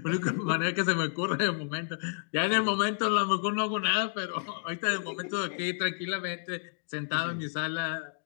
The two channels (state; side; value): silent; right; digital silence